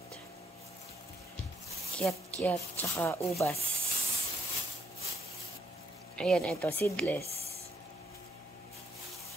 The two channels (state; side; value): normal; both; correlation 0.73